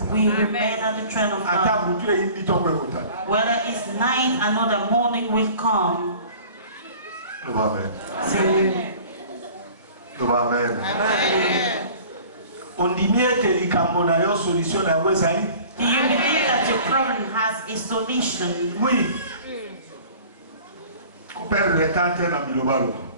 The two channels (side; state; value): both; inverted; correlation -0.46